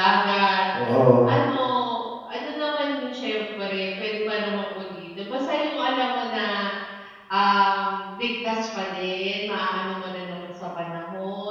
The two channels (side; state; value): both; identical; correlation 1.00